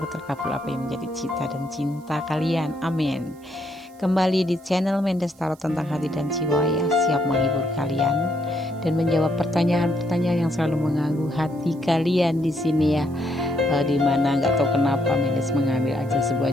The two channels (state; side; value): noise; right; hiss, 29 dB below the sound